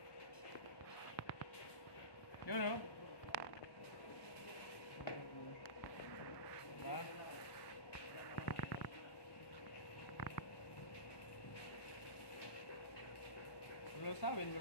Yun, o. Diba? Lulusawin mo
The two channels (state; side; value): late; right; 1.2 ms